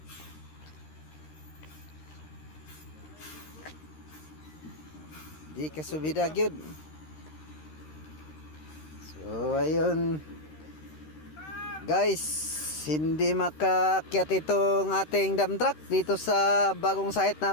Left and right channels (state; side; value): late; right; 13 ms